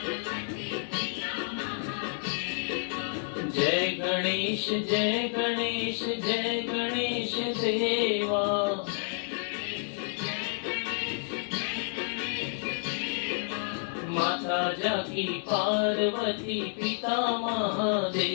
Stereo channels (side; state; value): right; silent; 58 dB below the other